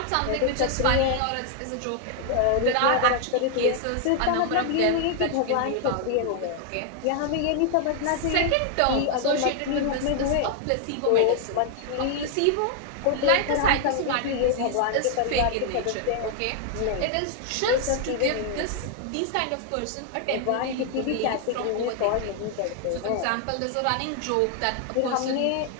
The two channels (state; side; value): different; both; correlation 0.00